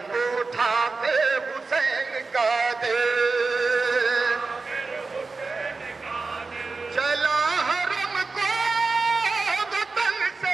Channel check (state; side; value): quieter; left; 4.0 dB